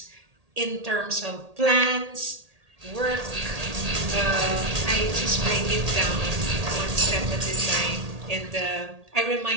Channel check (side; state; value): left; late; 1.8 ms